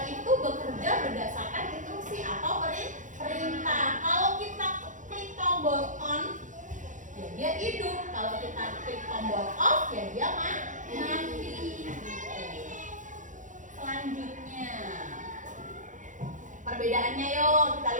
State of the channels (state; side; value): late; left; 0.37 ms